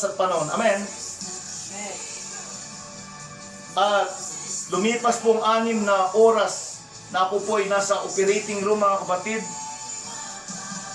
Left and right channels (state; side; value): identical; both; correlation 1.00